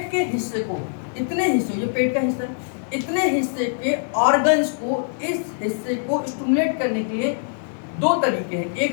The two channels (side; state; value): right; silent; 58 dB below the other